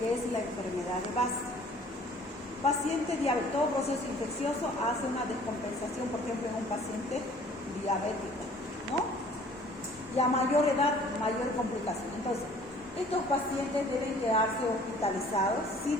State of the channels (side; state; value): both; normal; correlation 0.52